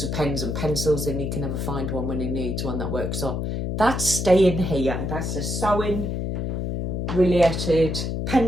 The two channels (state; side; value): noise; left; hum, 2 dB below the sound